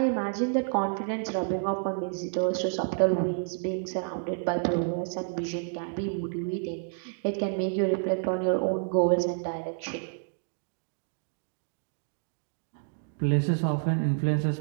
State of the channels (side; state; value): left; silent; digital silence